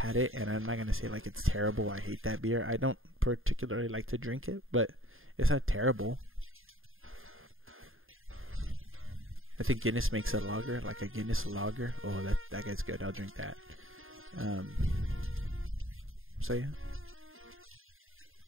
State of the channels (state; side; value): late; left; 0.60 ms